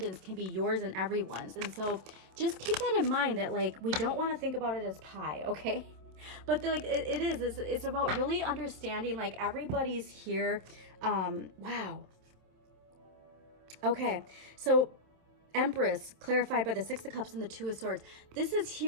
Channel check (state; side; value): late; left; 27 ms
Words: can be yours and everyone's. And so just keep that in mind, that like, we don't want to think about it as pie, okay? But like it's about really understanding like everybody's here. Wow. Okay, so Empress clarified by the 6 of Cups and the 2 of Swords. This is